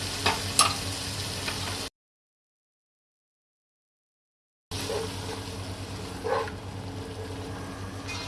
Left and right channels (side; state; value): both; identical; correlation 1.00